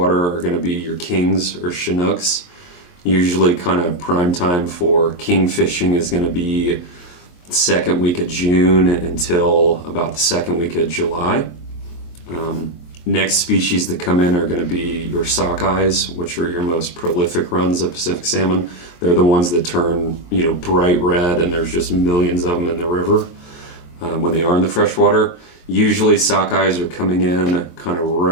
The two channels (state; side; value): late; right; 23 ms